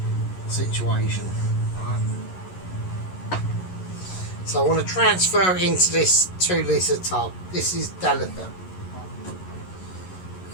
situation. Right. So I want to transfer it into this 2-litre tub. This is delicate.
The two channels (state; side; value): late; right; 11 ms